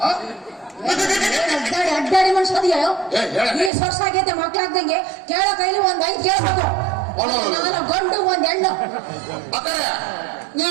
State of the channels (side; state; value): left; drops out; at 3.7 s